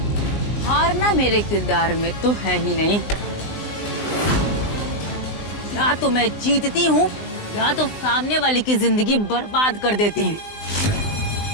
हारना मेरे किरदार में तो है ही नहीं। या तो मैं जीतती हूँ या तो सामने वाली की जिंदगी बर्बाद कर देती हूँ।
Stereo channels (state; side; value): late; right; 19 ms